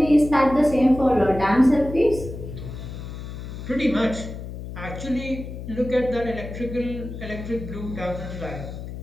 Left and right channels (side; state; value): left; noise; hum, 9 dB below the sound